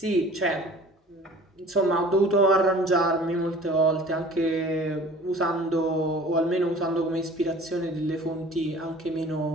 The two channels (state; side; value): normal; both; correlation 0.46